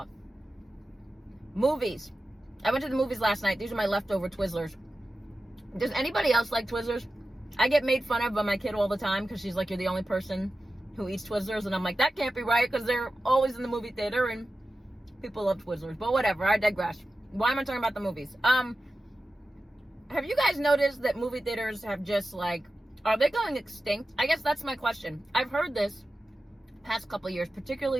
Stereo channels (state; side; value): normal; both; correlation 0.94